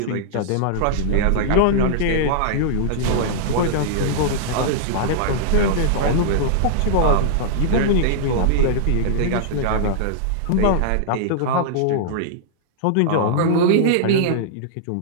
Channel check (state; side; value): different; both; correlation -0.01